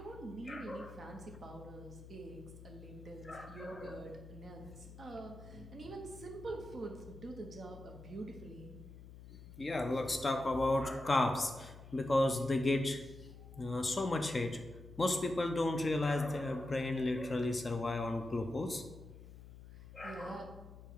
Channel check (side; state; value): left; noise; hum, 16 dB below the sound